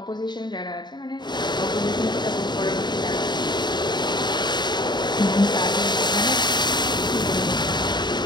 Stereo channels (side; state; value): right; late; 0.21 ms